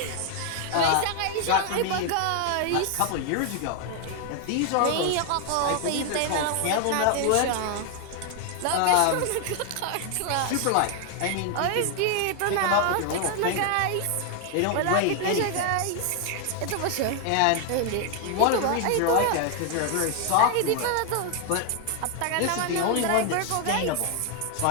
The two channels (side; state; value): both; different; correlation 0.00